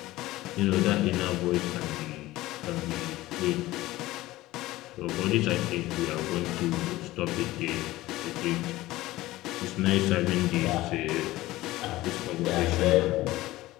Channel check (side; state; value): right; quieter; 17.4 dB